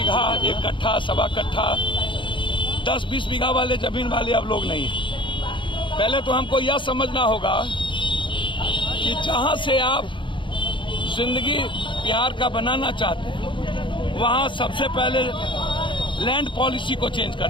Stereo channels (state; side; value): late; right; 0.24 ms